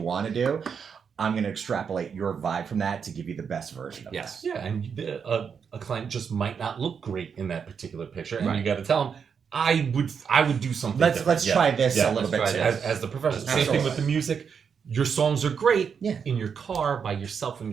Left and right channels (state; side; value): quieter; left; 6.6 dB